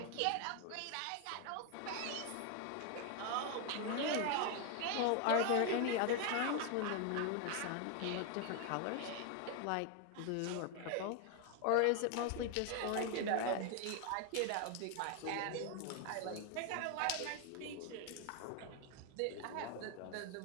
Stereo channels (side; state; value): both; different; correlation 0.01